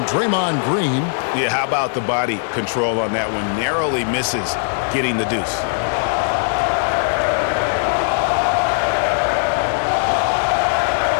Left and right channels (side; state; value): right; silent; digital silence